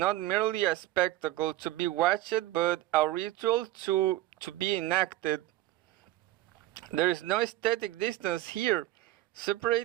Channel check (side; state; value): left; quieter; 15.7 dB